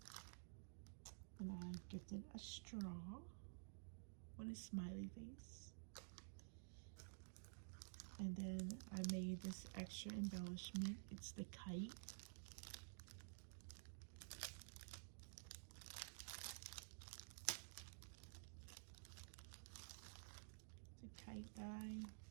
And I gifted a straw with a smiley face. And then I made this extra embellishment. It's the kite. It's a kite die.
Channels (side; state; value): left; silent; digital silence